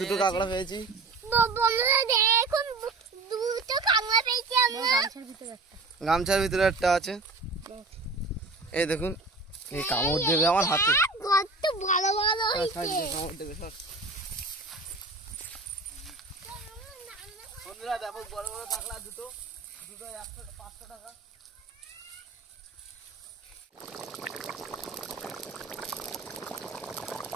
কাঁকড়া পেয়েছি। বন্ধুরা দেখুন দুটো কাঁকড়া পেয়েছি আমরা। গামছার ভিতরে একটা আছে, এই দেখুন। এই কামড় দেবে আমার হাতে। কত বড় বড় হয়েছে। কামড় দেবে সর। বন্ধুরা দেখো বড় বড় কাঁকড়া দুটো 500 টাকা।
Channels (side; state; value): left; quieter; 3.6 dB